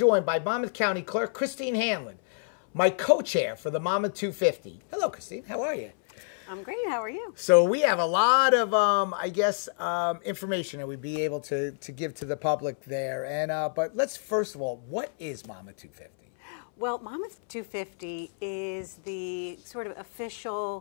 by Monmouth County Clerk Christine Hanlon, my co-chair for the Monmouth 250. Hello, Christine. How are you? I'm great. How are you? So we have a lot of, information that we'd be able to give to the public there. And but let's first of all, what is Monmouth 250? Well, Monmouth 250 is the sort of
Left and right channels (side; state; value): right; silent; 59 dB below the other